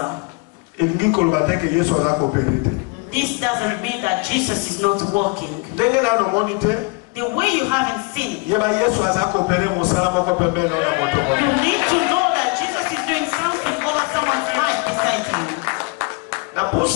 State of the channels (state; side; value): quieter; right; 30.2 dB